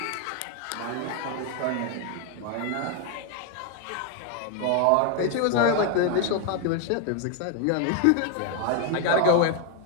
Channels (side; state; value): both; different; correlation 0.01